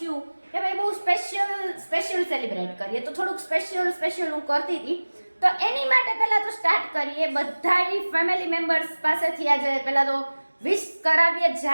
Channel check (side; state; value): both; inverted; correlation -1.00